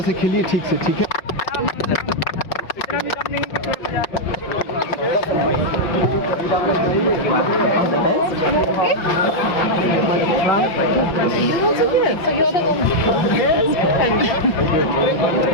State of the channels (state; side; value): late; right; 5.6 ms